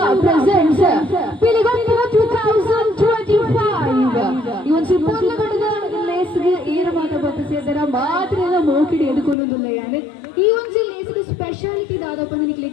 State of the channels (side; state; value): right; drops out; at 9.3 s